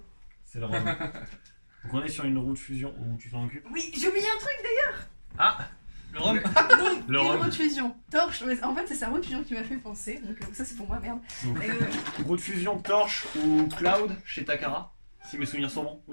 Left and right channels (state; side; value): inverted; both; correlation -1.00